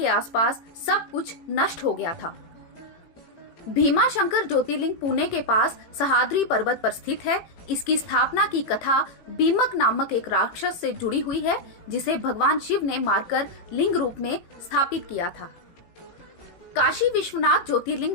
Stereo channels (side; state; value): right; late; 18 ms